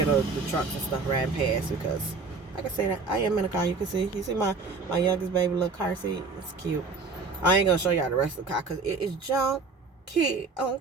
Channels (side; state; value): left; quieter; 4.2 dB